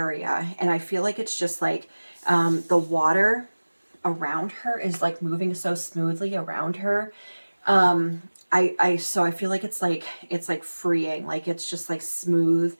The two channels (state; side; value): inverted; both; correlation -1.00